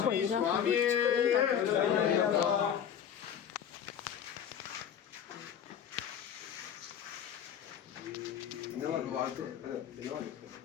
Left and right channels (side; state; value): right; quieter; 8.8 dB